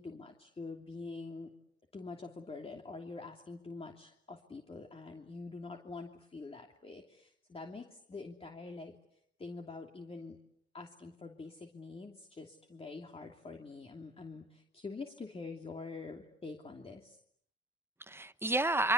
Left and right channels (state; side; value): normal; both; correlation 0.51